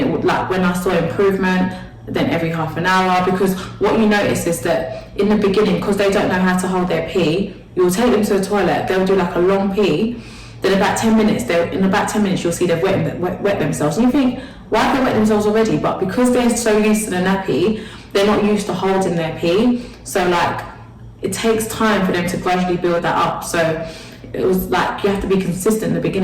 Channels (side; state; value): both; identical; correlation 1.00